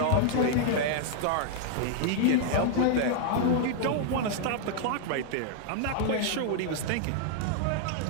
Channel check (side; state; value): both; different; correlation -0.01